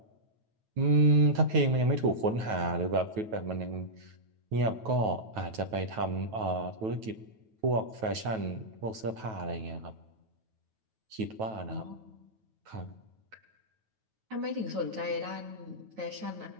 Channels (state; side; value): late; left; 9.2 ms